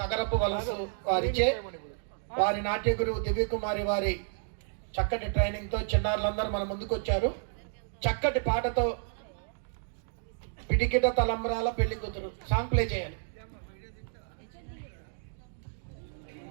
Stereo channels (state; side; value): silent; left; digital silence